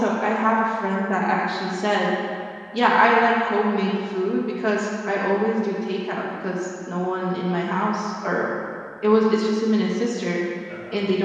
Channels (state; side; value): identical; both; correlation 1.00